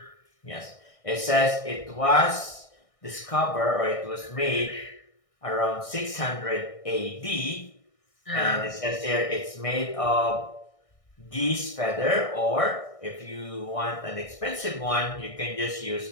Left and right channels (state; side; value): late; right; 1.6 ms